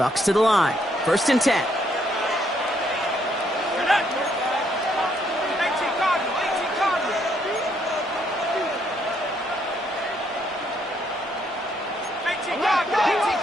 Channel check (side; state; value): both; normal; correlation 0.71